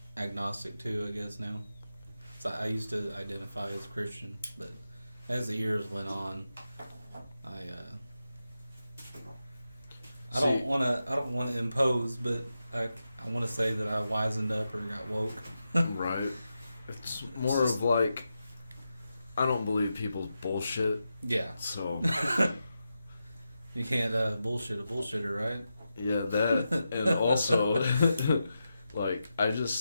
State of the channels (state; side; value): inverted; both; correlation -0.89